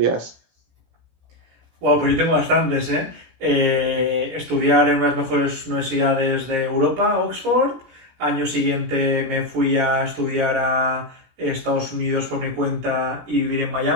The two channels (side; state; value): left; late; 17 ms